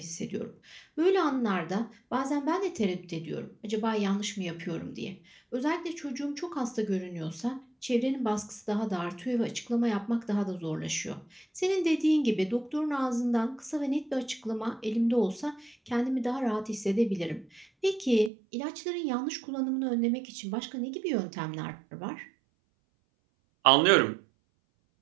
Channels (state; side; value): drops out; left; at 18.3 s